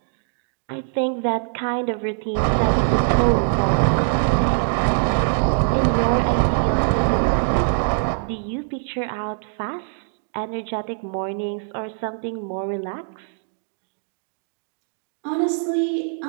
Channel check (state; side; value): silent; left; digital silence